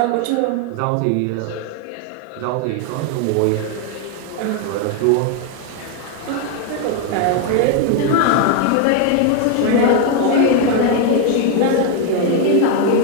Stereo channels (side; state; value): both; different; correlation 0.01